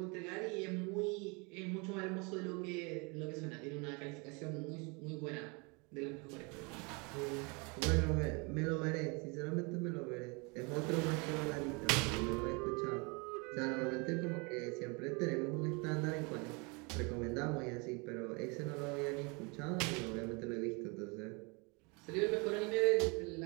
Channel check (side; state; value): left; quieter; 30.4 dB